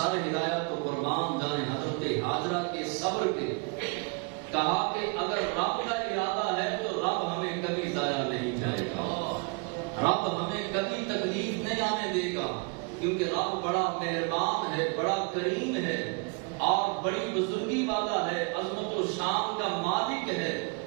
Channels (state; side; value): quieter; left; 32.3 dB